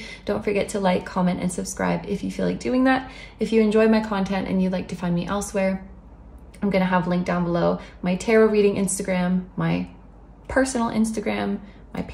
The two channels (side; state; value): both; identical; correlation 1.00